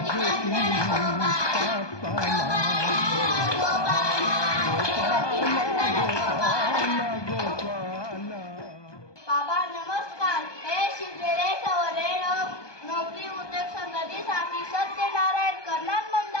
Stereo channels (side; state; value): right; late; 1.2 ms